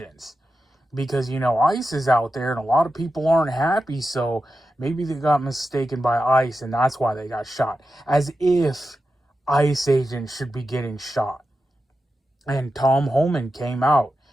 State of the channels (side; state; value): both; normal; correlation 0.90